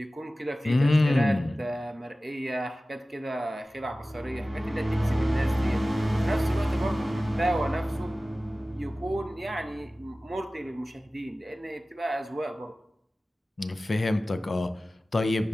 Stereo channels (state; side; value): normal; both; correlation 0.96